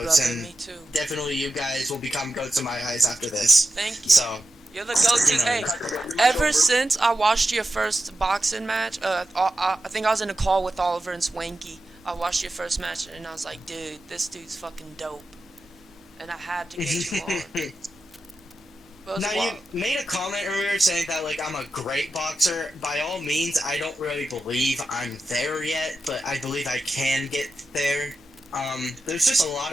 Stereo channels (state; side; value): normal; both; correlation 0.91